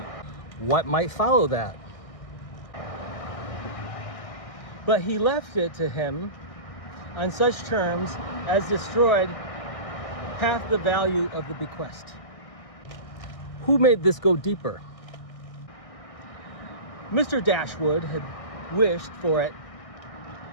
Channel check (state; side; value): late; right; 1.6 ms